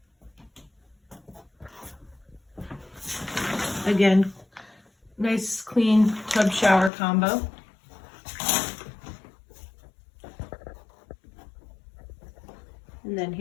Again, nice clean tub shower combo. And then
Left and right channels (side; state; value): right; drops out; at 6.9 s